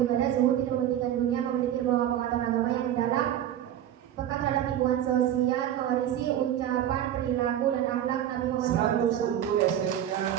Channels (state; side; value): quieter; left; 11.1 dB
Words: zuhud, tidak mementingkan dunia, memiliki bahwa pengetahuan agama yang mendalam, peka terhadap lingkungan sosial, mewarisi ucapan, perilaku, dan akhlak Nabi Muhammad 100 untuk SMK